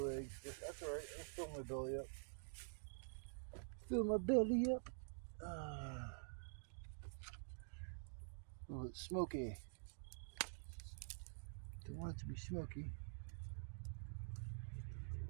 eggs, but that's alright. Let's fill my belly up. Fill my belly up. Oh, it's smoky. Don't want it to be smoky.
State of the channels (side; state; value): left; silent; digital silence